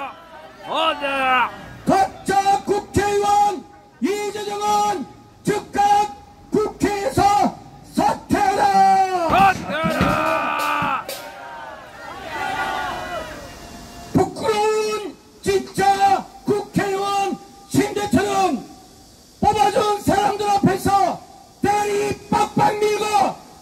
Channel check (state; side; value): identical; both; correlation 1.00